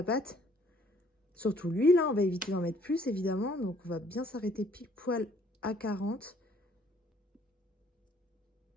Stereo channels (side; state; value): both; normal; correlation 0.61